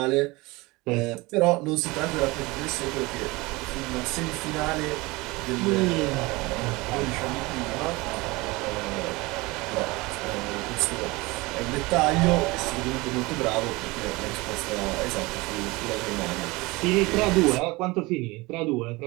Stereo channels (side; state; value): left; quieter; 22.9 dB